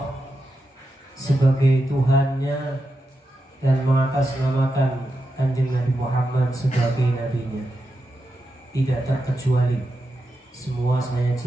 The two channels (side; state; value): both; normal; correlation 0.88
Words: sebagai Tuhannya dan mengatasnamakan Kanjeng Nabi Muhammad sebagai nabinya, tidak terkecuali. Semua saya